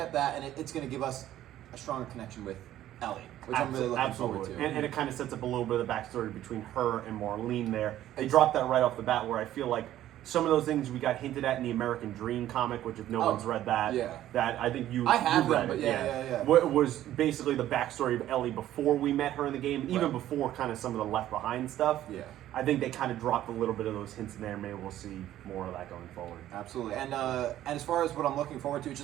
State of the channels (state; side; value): quieter; left; 13.0 dB